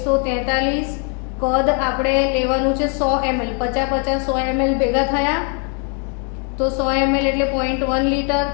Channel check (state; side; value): quieter; right; 38.4 dB